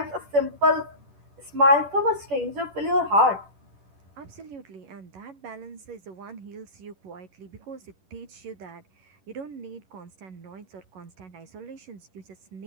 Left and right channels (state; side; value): late; left; 10 ms